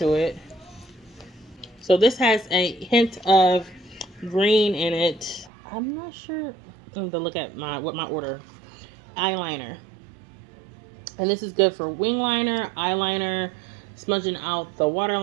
it. So this has a hint of green in it. I'm not sure. I need to look at my order. Eyeliner. And this is good for wing liner, eyeliner, smudging out the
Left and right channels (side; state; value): left; drops out; at 5.5 s